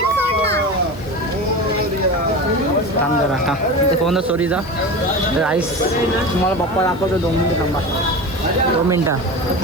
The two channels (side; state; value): left; noise; hiss, 25 dB below the sound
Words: थांब जरा, थांब तिथे फोन सॉरी जा. तर आईस तुम्हाला पप्पा दाखवतो. 2 मिनिटं थांबा. 2 मिनिटं